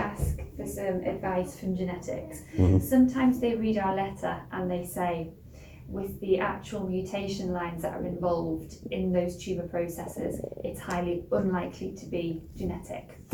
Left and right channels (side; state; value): both; identical; correlation 1.00